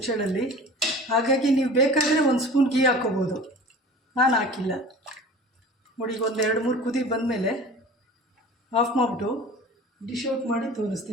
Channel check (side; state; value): both; normal; correlation 0.41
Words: ಹಾಗಾಗಿ ನೀವು ಬೇಕಾದರೆ 1 ಸ್ಪೂನ್ ಗೀ ಹಾಕ್ಕೋಬೋದು, ನಾನು ಹಾಕಿಲ್ಲ. ನೋಡಿ ಈಗ ಒಂದು 2-3 ಕುದಿ ಬಂದಮೇಲೆ ಆಫ್ ಮಾಡಿಬಿಟ್ಟು ಡಿಶ್ ಔಟ್ ಮಾಡಿ